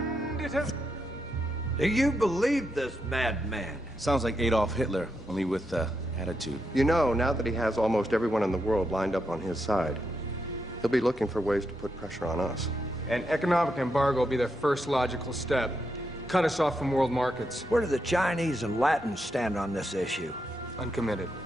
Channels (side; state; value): both; normal; correlation 0.83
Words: it has... Do you believe this madman? Sounds like Adolf Hitler, only with attitude. You know, now that he has almost everyone in the world lined up on his side, he'll be looking for ways to put pressure on us. An economic embargo will be their first logical step. Cut us off from world markets. Where do the Chinese and Latins stand on this issue? Uncommitted.